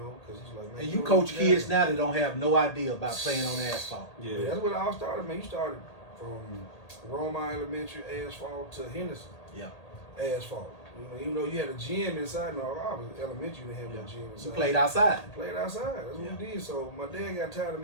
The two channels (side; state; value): right; late; 1.8 ms